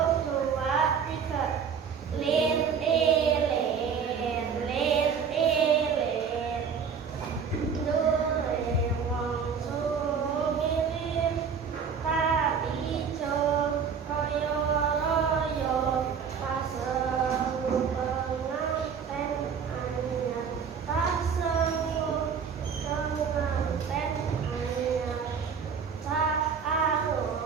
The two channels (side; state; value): left; quieter; 6.5 dB